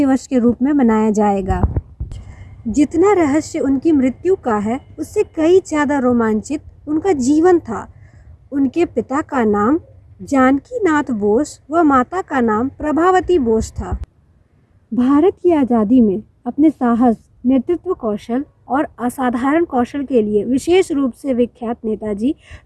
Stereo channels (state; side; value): identical; both; correlation 1.00